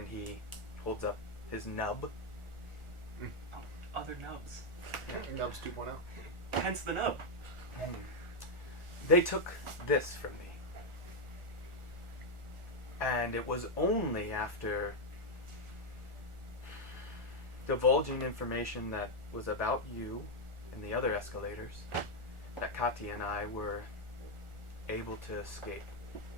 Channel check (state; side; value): late; left; 1.4 ms